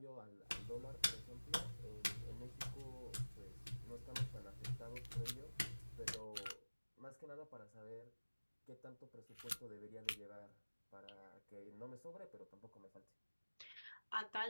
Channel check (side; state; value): both; inverted; correlation -1.00